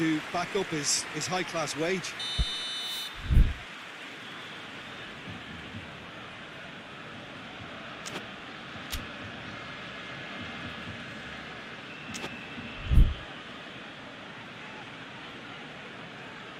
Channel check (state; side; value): identical; both; correlation 1.00